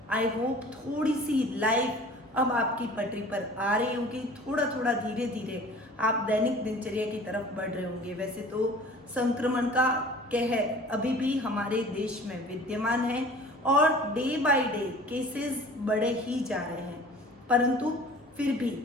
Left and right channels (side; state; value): both; normal; correlation 0.45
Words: आई होप थोड़ी सी लाइफ अब आपकी पटरी पर आ रही होगी, थोड़ा थोड़ा धीरे धीरे आप दैनिक दिनचर्या की तरफ बढ़ रहे होंगे। वैसे तो संक्रमण का कहर अभी भी हमारे देश में विद्यमान है और डे बाय डे केसेस बढ़े ही जा रहे हैं, परंतु फिर भी